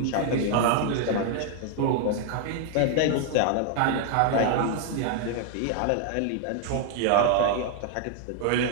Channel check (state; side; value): different; both; correlation 0.00